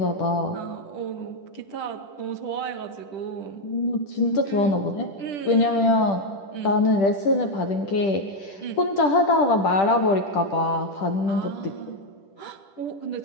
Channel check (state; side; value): late; right; 10 ms